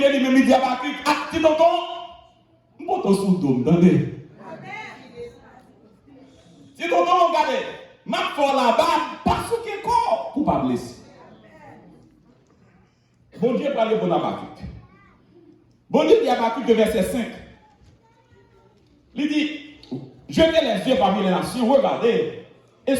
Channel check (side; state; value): both; identical; correlation 1.00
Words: lui-même, il dit Abakik, acte dans ton. Mon ton sous dôme, attendez. Si ton nom, regardez, ma foi là-bas, parce que quoi? Pour pas blesser. Bon Dieu parle pour Abakik. Bon Dieu dit Abakik, verset 5. Il dit, jetez les yeux parmi les nations, regardez, et